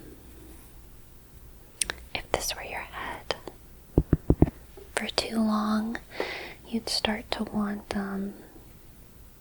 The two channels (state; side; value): identical; both; correlation 1.00